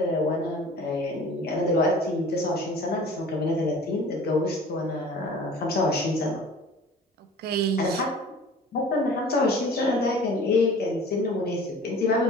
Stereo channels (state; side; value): normal; both; correlation 0.44